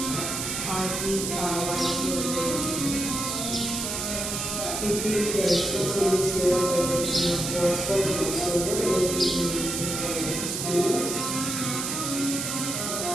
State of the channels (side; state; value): right; noise; hiss, 3 dB below the sound